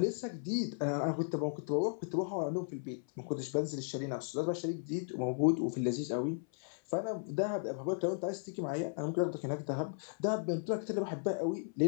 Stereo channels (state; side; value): silent; right; 54 dB below the other